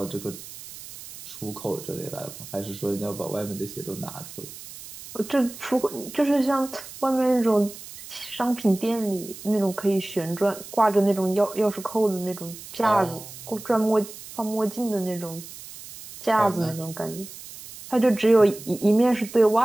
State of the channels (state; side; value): noise; right; hiss, 15 dB below the sound